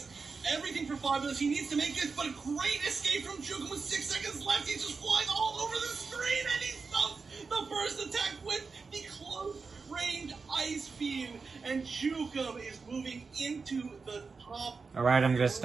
everything for Fabilous. He needs to make this, but a great escape from Jukem with 6 seconds left. He's just flying all over the screen, and he stumps the first attack with the close range Ice Beam, and Jukem is moving into the top. Alright, I'm gonna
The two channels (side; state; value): left; quieter; 4.7 dB